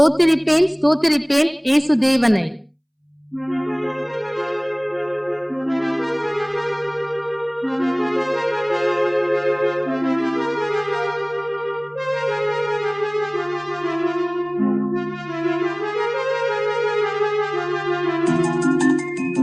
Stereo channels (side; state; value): both; identical; correlation 1.00